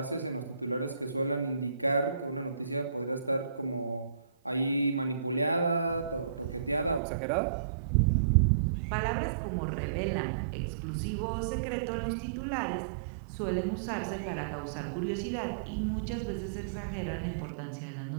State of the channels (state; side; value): drops out; left; at 7.0 s